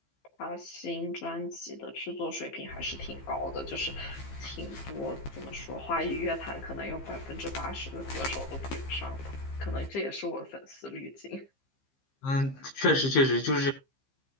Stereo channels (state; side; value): late; right; 15 ms